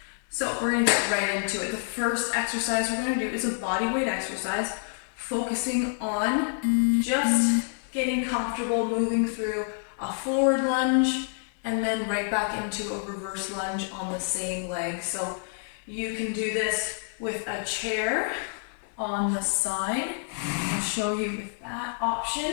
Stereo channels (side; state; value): right; silent; digital silence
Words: So we're going to get right into it. The first exercise we're going to do is a body weight exercise, focusing on just getting comfortable moving through a forward lunge and then right back into a reverse lunge on the same leg. So you can do this with a chair on the side. I'll show you with that option.